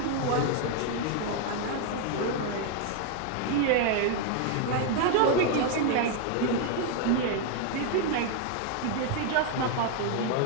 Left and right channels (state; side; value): different; both; correlation 0.01